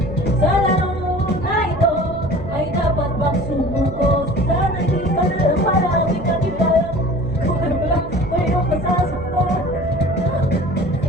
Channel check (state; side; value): noise; right; hum, 12 dB below the sound